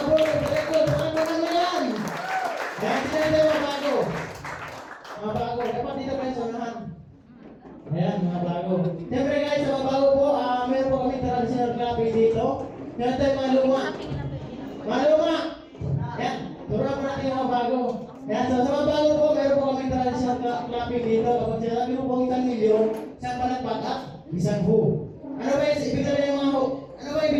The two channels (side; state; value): both; identical; correlation 1.00